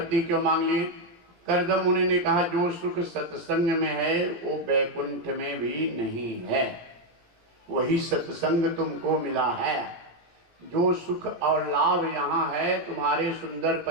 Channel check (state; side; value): late; left; 17 ms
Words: क्यों मांग लिए? कर्दम मुनि ने कहा जो सुख सत्संग में है वो वैकुंठ में भी नहीं है, वही सत्संग तुमको मिला है। जो सुख और लाभ यहाँ है तुम्हारे सुंदर